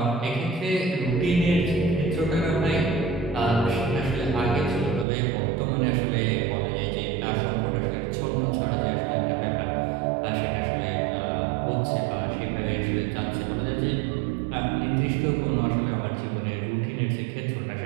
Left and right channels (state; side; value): drops out; left; at 5.1 s